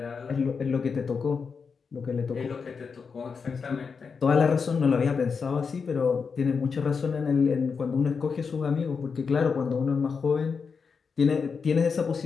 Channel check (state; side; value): quieter; right; 5.5 dB